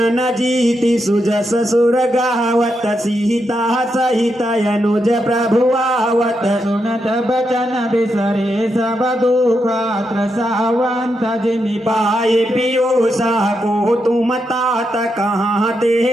न जीति सुजस सुर गावत सीता सहित अनुज प्रभु आवत सुनत बचन बिसरे सब दुख त्रसावंत जिमि पाए पियोसा को तुम तात कहाँ ते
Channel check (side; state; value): both; normal; correlation 0.83